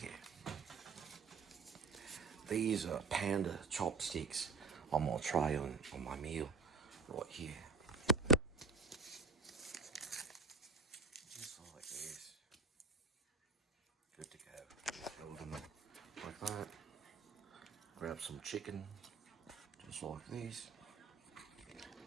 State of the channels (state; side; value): quieter; left; 4.4 dB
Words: These are panda chopsticks I'm going to try on my meal right here. Just like this. Good to go. Load them like that. Grab some chicken, just like this.